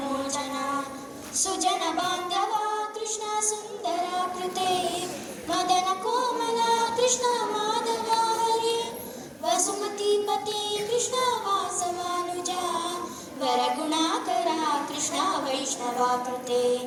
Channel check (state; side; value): identical; both; correlation 1.00